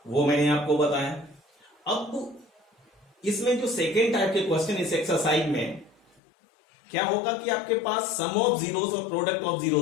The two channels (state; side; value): drops out; right; at 6.2 s